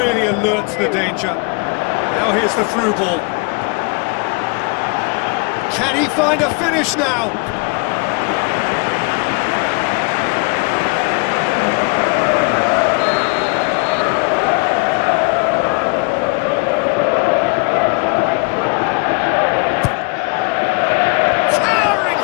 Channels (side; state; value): right; quieter; 31.1 dB